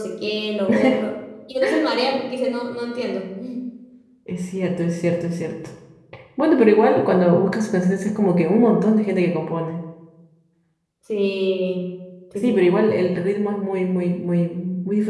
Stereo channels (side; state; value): both; identical; correlation 1.00